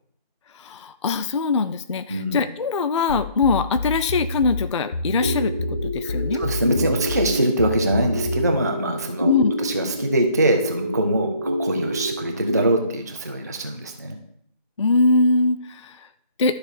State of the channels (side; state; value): both; inverted; correlation -0.59